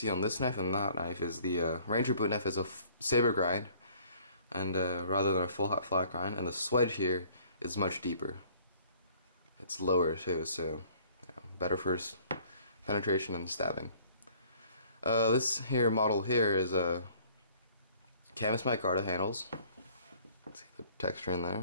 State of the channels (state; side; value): inverted; both; correlation -0.56